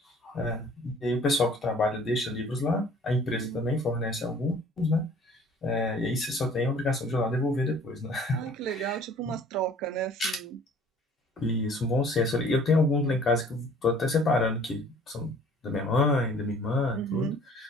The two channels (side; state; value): both; normal; correlation 0.52